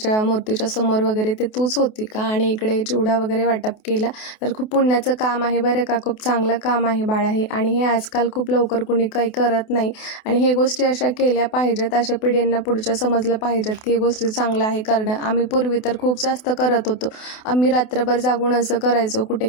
मूर्तीच्या समोर वगैरे, ते तूच होती का? आणि इकडे चिवडा वगैरे वाटप केला, तर खूप पुण्याचं काम आहे बरं का, खूप चांगलं काम आहे बाळा हे. आणि हे आजकाल खूप लवकर कुणी काही करत नाही आणि हे गोष्टी अशा केल्या पाहिजेत, अशा पिढींना पुढच्या समजलं पाहिजेत की हे गोष्टी चांगलं आहे करणं. आम्ही पूर्वी तर खूप जास्त करत होतो, आम्ही रात्रभर जागून असं करायचो, कुठे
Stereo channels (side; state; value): right; late; 28 ms